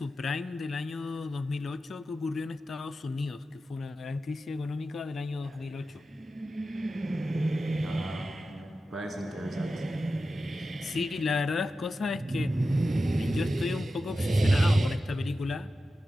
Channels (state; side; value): normal; both; correlation 0.92